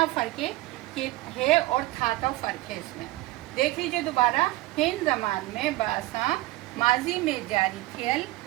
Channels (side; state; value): left; quieter; 18.8 dB